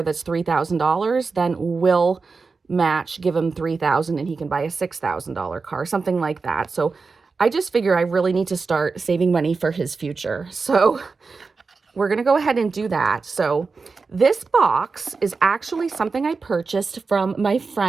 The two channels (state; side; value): quieter; left; 4.5 dB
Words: that's $3,000, then we'll match, give him $3,000 and he can buy a $6,000 car, something like that. So I just figure I really need to start saving money for his future. So we're going to go ahead and do that. So this box is actually something I purchased from my